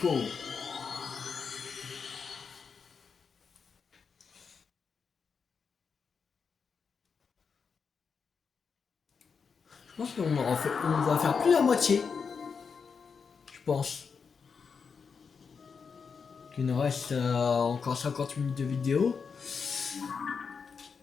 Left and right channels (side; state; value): right; quieter; 5.8 dB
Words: Je pense qu'on on va faire plus la moitié. Je pense. Il nous reste encore 50 minutes de vidéo.